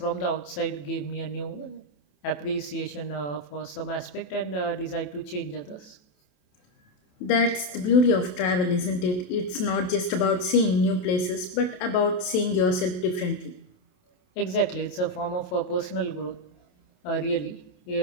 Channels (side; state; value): right; late; 28 ms